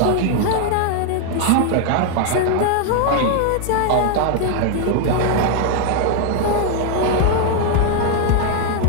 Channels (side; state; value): both; different; correlation 0.00